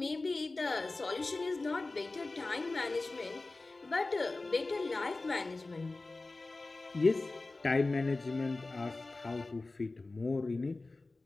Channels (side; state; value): right; quieter; 3.3 dB